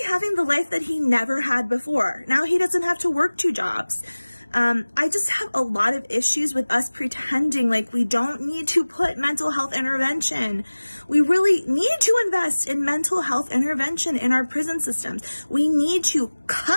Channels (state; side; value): inverted; both; correlation -1.00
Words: having the life that he never had before. Now he doesn't have to work 2 jobs. I just have a lot of issues with us pretending like we don't need to put mental health intervention. We really need to invest in mental health intervention in our prison systems. We need to